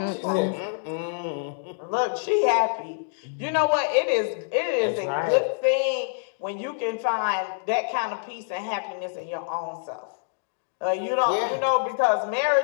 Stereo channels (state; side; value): silent; right; digital silence